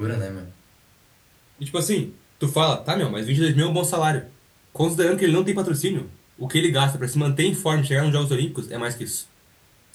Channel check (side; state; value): both; identical; correlation 1.00